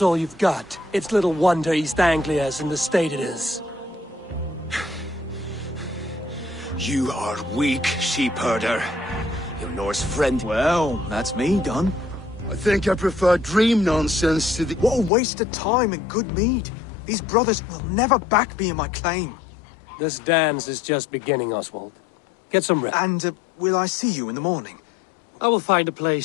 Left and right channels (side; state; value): right; drops out; at 15.1 s